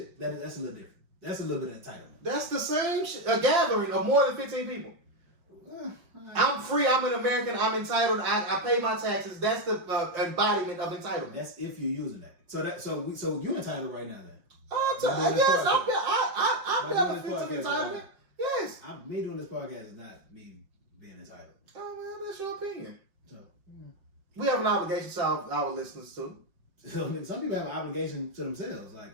that's a little different. That's a little bit of entitlement. That's the same shit. A gathering of more than 15 people. I'm free. I'm an American. I'm entitled. I pay my taxes. That's the embodiment of entitlement. That's if you're using that. So you're entitled right now then. Yes, I benefit from entitlement. Yes. Me doing this podcast is not me being entitled. Oh well, that's your opinion. So we have an obligation to our listeners too. Some people have an obligation to themselves,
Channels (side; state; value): left; late; 5.5 ms